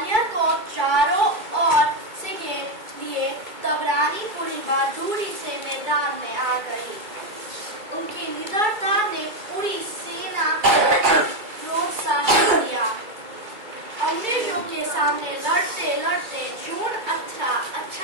को चारों ओर से घेर लिए, तब रानी पूरी बहादुरी से मैदान में आ गई। उनकी निडरता ने पूरी सेना को प्रोत्साहन दिया। अंग्रेजों के सामने लड़ते लड़ते जून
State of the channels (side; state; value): left; late; 2.3 ms